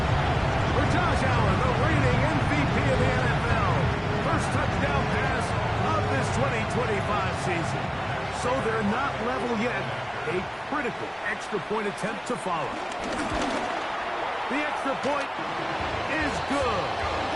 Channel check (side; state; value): both; identical; correlation 1.00